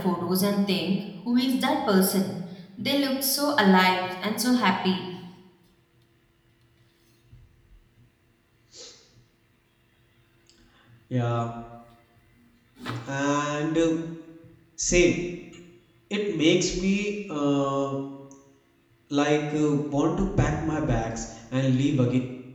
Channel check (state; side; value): identical; both; correlation 1.00